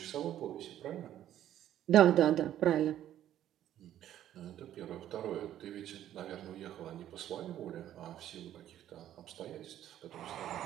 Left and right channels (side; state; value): left; quieter; 11.8 dB